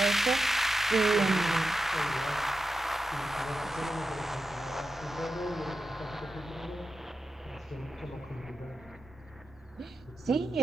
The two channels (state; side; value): normal; both; correlation 0.89